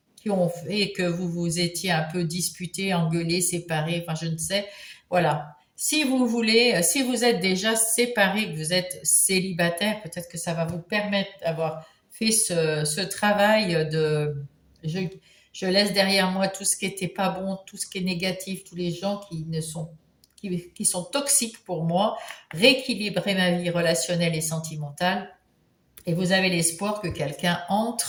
qui ont fait que vous vous étiez un peu disputés, engueulés, séparés, enfin je ne sais. Voilà. Si vous voulez, si vous êtes déjà séparés, que vous êtes célibataire, peut-être que ça va vous permettre d'avoir fait ce travail de je, je laisse derrière moi tout ce qui n'était pas bon, tout ce qui est négatif, tous les gens qui sont toxiques pour moi, rééquilibrer ma vie relationnelle et sentimentale, et vous avez l'espoir que quelqu'un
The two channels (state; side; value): identical; both; correlation 1.00